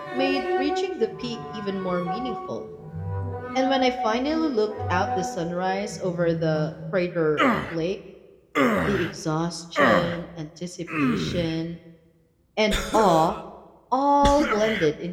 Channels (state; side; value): identical; both; correlation 1.00